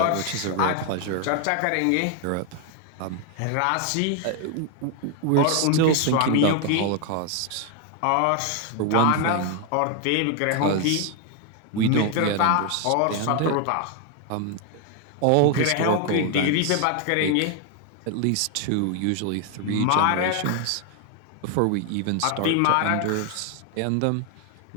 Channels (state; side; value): different; both; correlation 0.00